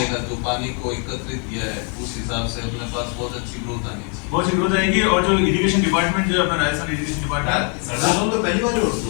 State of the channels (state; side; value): quieter; right; 39.1 dB